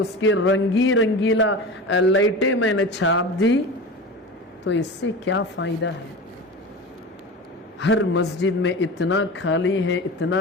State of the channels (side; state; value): both; normal; correlation 0.30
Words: रंगीला लाइटें मैंने छाप दी। तो इससे क्या फ़ायदा है? हर मस्जिद में इतना खाली है,